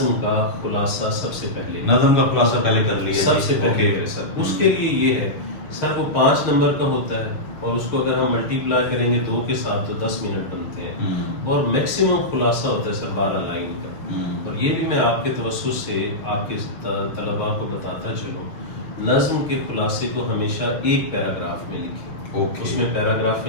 کا خلاصہ سب سے پہلے، نظم کا خلاصہ پہلے کر لیا سب سے پہلے کرے سر. اس کے لیے یہ ہے سر، وہ 5 نمبر کا ہوتا ہے اور اس کو اگر ہم ملٹی پلائی کریں گے 2 کے ساتھ تو 10 منٹ بنتے ہیں. اور میکسیمم خلاصہ ہوتا ہے سر 12 لائن کا. اور یہ بھی میں آپ کے توسط سے آپ کے طلباء کو بتاتا چلوں، نظم کے خلاصے کو ہمیشہ 1 پیراگراف میں لکھیں. Okay. اس میں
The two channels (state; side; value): late; right; 6.4 ms